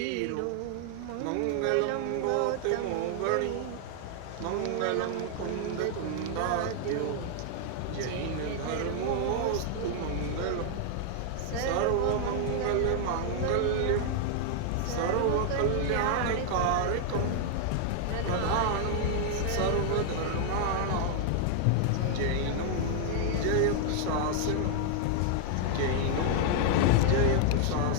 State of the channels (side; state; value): both; different; correlation 0.00